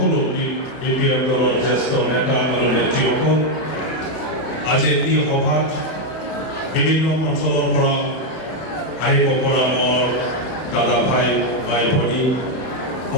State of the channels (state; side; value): late; right; 31 ms